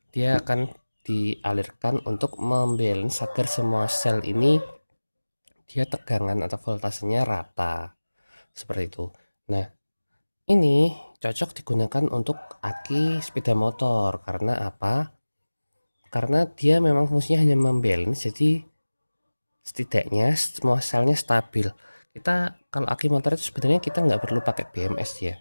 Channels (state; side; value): inverted; both; correlation -1.00